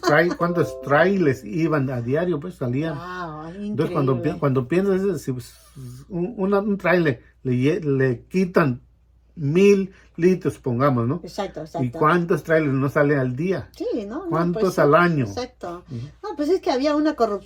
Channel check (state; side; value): identical; both; correlation 1.00